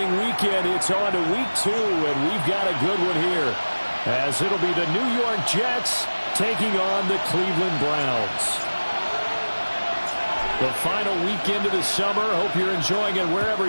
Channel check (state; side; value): inverted; both; correlation -1.00